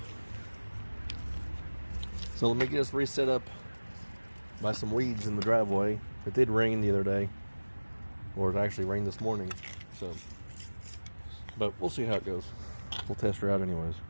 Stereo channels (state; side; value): inverted; both; correlation -1.00